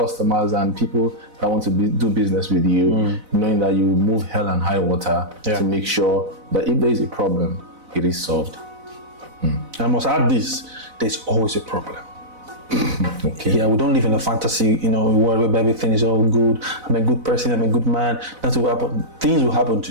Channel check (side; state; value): left; late; 4.0 ms